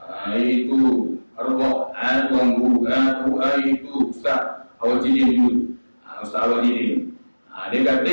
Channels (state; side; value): inverted; both; correlation -1.00